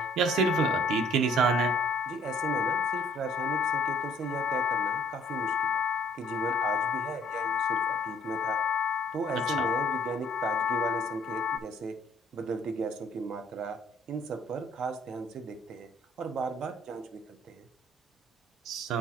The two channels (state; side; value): normal; both; correlation 0.58